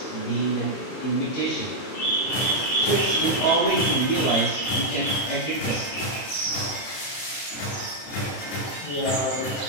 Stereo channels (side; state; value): right; late; 31 ms